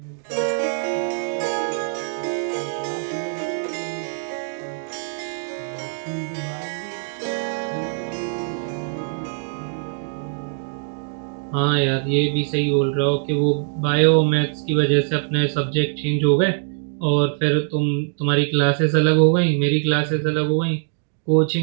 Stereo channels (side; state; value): left; silent; digital silence